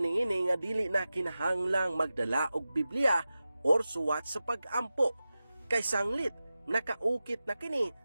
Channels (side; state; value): both; inverted; correlation -0.94